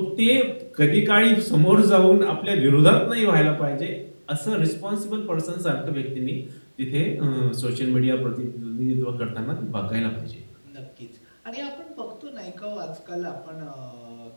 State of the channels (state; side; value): inverted; both; correlation -1.00